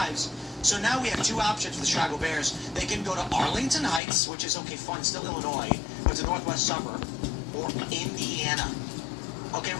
So now we have two options for the Chicago Bears. They can go to Arlington Heights, which is, okay, fine, still Illinois, but it's a northwest suburb, or Indiana. Okay,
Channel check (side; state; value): right; drops out; at 4.0 s